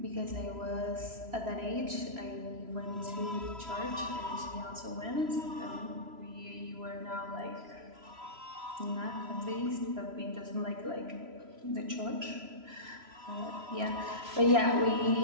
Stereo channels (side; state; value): left; late; 3.0 ms